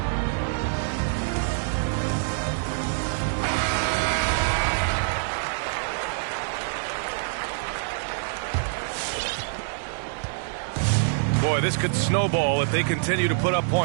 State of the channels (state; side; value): silent; left; digital silence